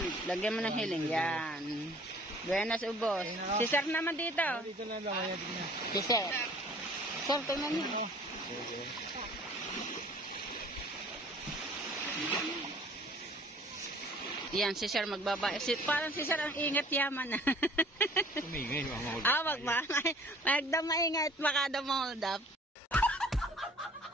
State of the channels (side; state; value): both; normal; correlation 0.52